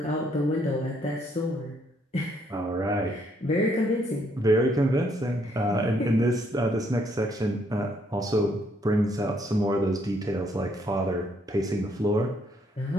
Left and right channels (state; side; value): normal; both; correlation 0.70